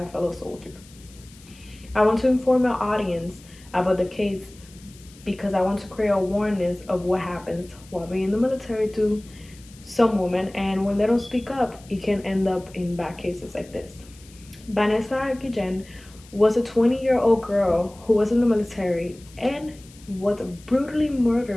fellow soldier. I want to inform our audience about the case because I want to create awareness of what happens while being in the military to some women, and when they don't speak up, it can end up in bad cases like this. Vanessa Guillen was a 20-year-old girl who was in the military and was brutally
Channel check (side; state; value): left; noise; hiss, 24 dB below the sound